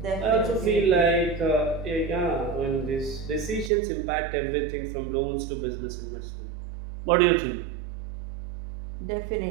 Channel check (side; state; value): left; drops out; at 3.7 s